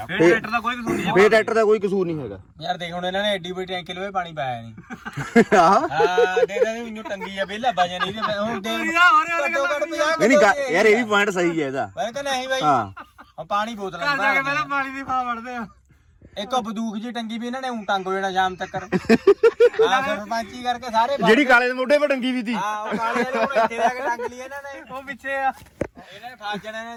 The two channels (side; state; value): both; identical; correlation 1.00